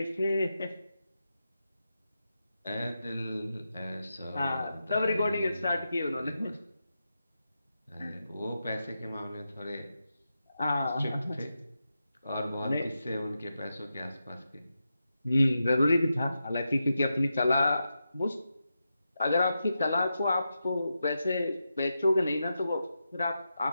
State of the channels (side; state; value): both; inverted; correlation -0.88